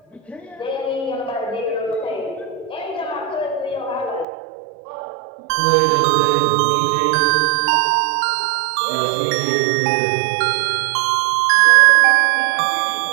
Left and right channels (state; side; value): drops out; left; at 4.2 s